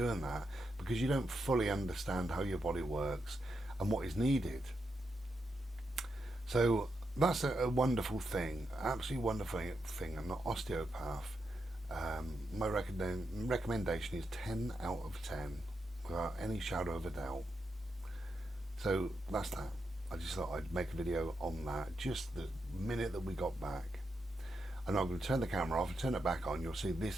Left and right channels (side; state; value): both; normal; correlation 0.84